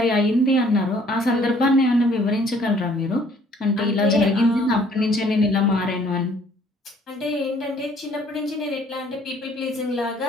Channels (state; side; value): normal; both; correlation 0.59